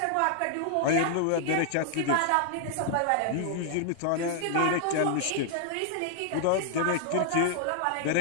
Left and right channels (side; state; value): both; different; correlation -0.01